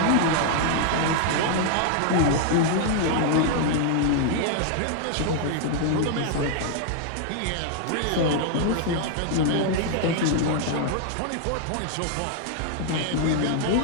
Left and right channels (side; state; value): both; different; correlation 0.00